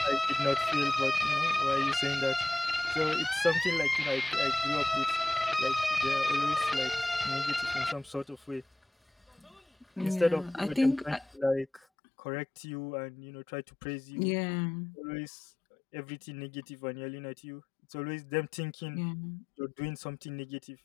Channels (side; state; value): right; drops out; at 11.9 s